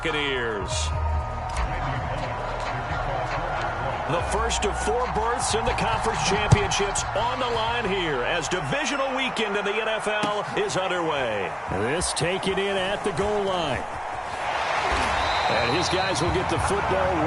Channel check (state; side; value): identical; both; correlation 1.00